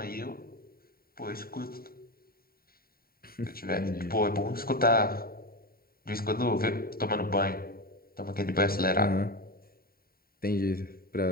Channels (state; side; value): late; right; 0.43 ms